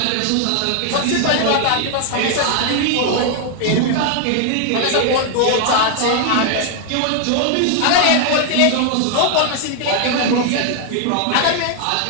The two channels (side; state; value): both; different; correlation 0.00